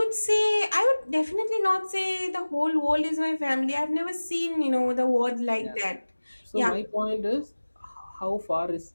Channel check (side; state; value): both; inverted; correlation -1.00